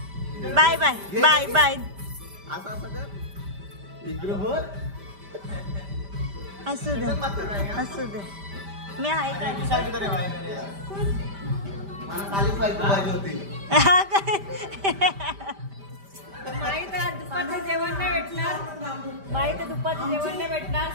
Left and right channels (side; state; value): left; late; 5.1 ms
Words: Bye bye bye bye. असं असं कर इकडं बोल. असू दे असू दे. मी आहे का? मला खालीच पाहिजे होती. माहित आहे दुपारचं जेवण नाही भेटणार. माहित आहे दुपारचं जेवण नाही भेटणार.